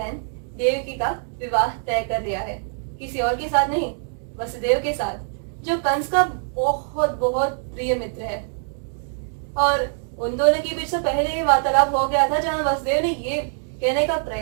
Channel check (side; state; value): left; silent; 63 dB below the other